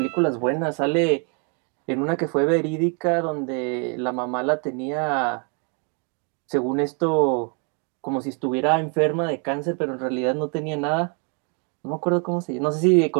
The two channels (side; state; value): left; quieter; 36.7 dB